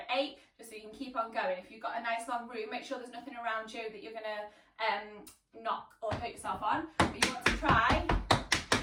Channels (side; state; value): both; identical; correlation 1.00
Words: 8, just so you can keep on going. If you've got a nice long room, make sure there's nothing around you that you're going to knock or hurt yourself on. But you want to try.